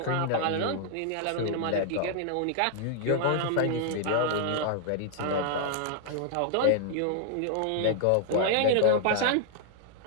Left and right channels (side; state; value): both; different; correlation -0.01